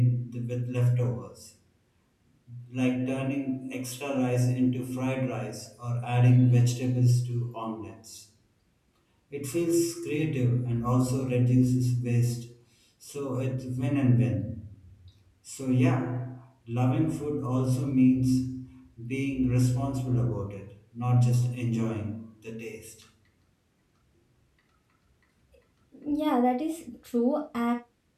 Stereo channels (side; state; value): both; identical; correlation 1.00